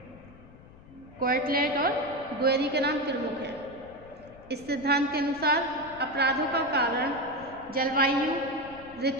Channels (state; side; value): noise; left; rumble, 21 dB below the sound